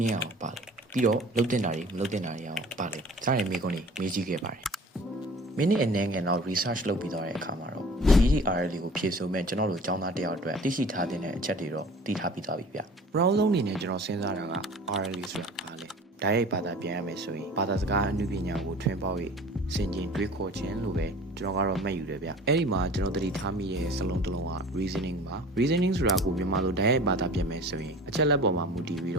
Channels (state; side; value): normal; both; correlation 0.44